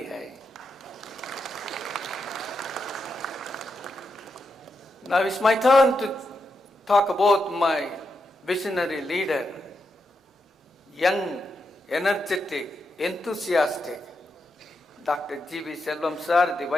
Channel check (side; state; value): both; normal; correlation 0.85